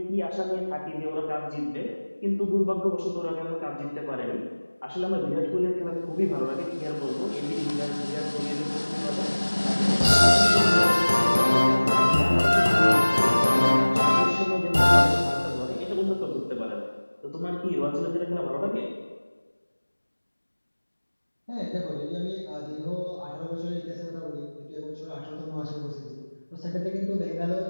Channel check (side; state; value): both; inverted; correlation -1.00